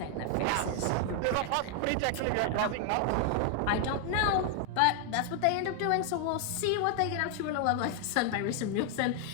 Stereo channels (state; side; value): different; both; correlation 0.00